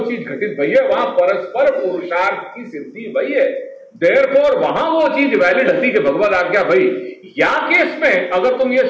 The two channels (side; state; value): both; identical; correlation 1.00